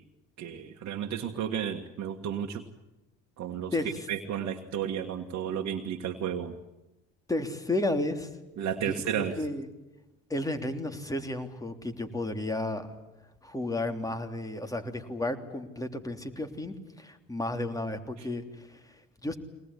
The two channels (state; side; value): normal; both; correlation 0.44